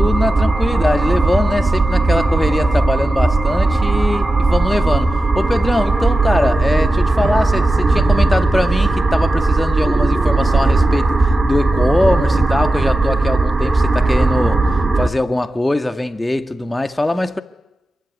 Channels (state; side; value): normal; both; correlation 0.93